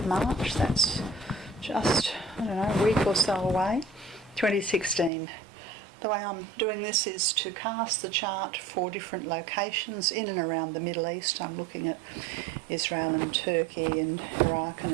March. That's just, a week or so away, 2016. The way I'm doing this is to cast the chart for different locations in and around the Middle East. I'm looking at Israel and Turkey and Iraq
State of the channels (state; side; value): drops out; left; at 5.1 s